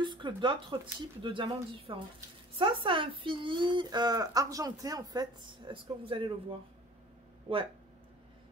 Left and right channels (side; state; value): both; normal; correlation 0.47